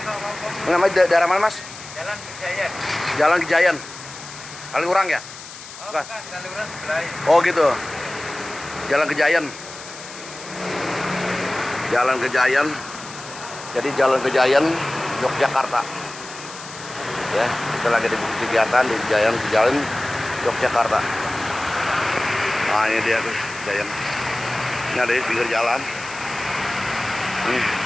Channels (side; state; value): left; noise; hiss, 14 dB below the sound